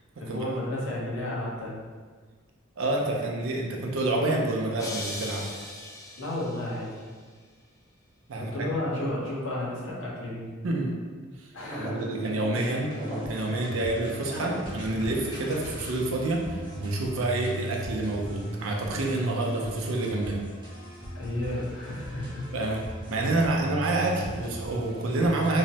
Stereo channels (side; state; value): both; normal; correlation 0.44